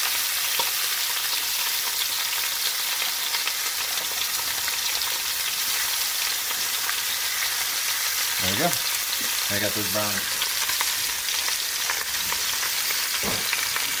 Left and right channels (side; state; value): both; identical; correlation 1.00